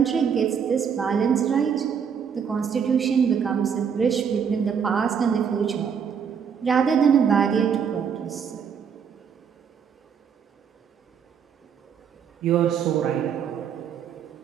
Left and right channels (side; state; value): left; quieter; 7.2 dB